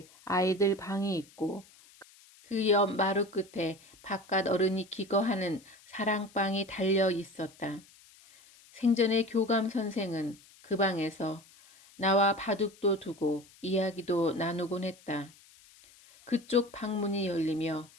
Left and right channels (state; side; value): noise; left; hiss, 25 dB below the sound